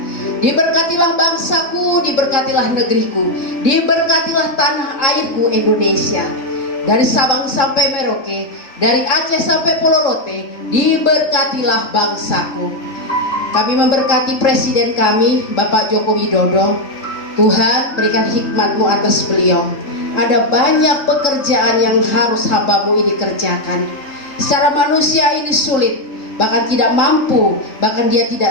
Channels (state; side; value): late; right; 3.7 ms